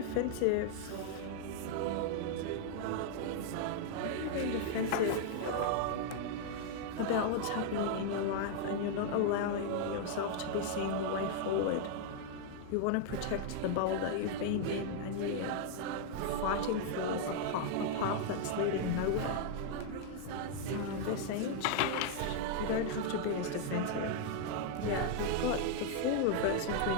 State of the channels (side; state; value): both; different; correlation -0.01